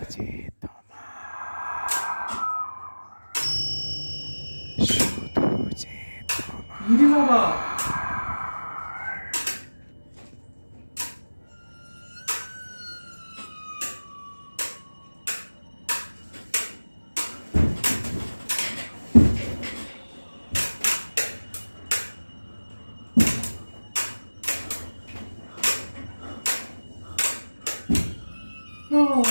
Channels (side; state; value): both; inverted; correlation -1.00